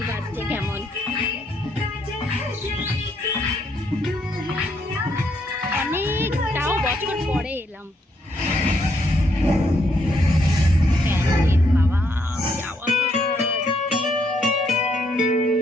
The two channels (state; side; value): normal; both; correlation 0.73